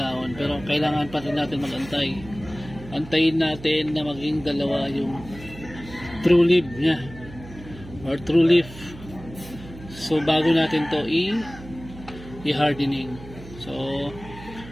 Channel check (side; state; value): right; noise; hum, 16 dB below the sound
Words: pero kailangan pa rin natin magantay. Antayin natin na maging dalawa yung true leaf nya or true leaf. So bago natin to i-hardening. So